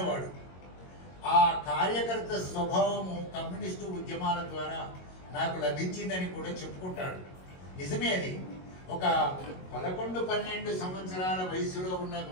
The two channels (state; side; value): late; right; 22 ms